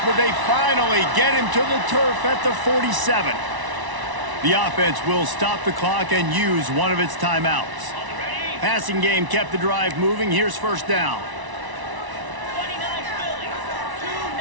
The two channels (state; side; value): late; left; 1.0 ms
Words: but they finally get him to the turf at the 47. The offense will stop the clock and use one of its timeouts. Passing game kept the drive moving. Here's first down.